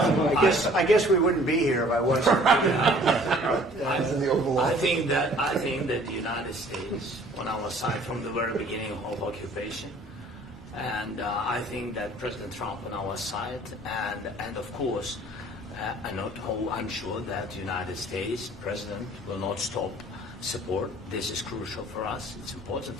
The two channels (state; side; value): normal; both; correlation 0.53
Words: guess we wouldn't be here if I wasn't. I think that the United States, on our side from the very beginning of occupation, and I think that President Trump on our side, and of course, I'm sure that the United States President will not stop support. This is crucial for us. It's important